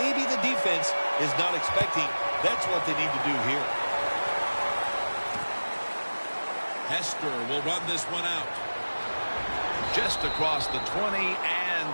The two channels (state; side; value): inverted; both; correlation -1.00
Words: the defense is not expecting? That's what they need to do here. Hester will run this one out. Just across the 20 and